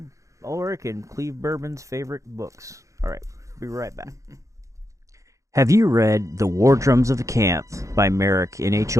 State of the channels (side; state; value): left; late; 0.15 ms